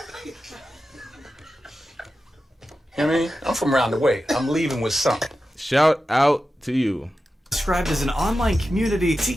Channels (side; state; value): both; normal; correlation 0.92